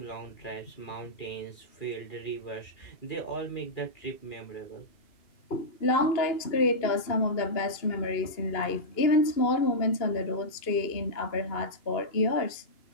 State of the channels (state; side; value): late; right; 2.8 ms